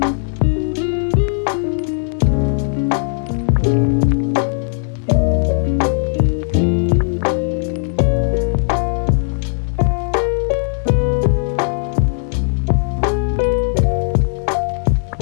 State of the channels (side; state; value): right; silent; 64 dB below the other